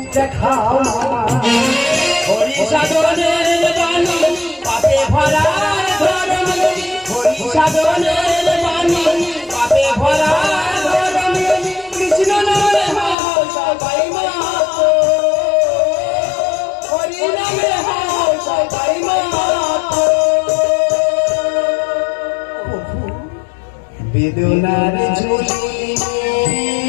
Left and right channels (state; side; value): drops out; right; at 13.2 s